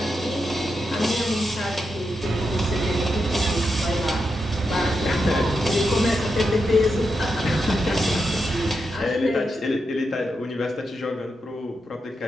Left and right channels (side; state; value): both; normal; correlation 0.86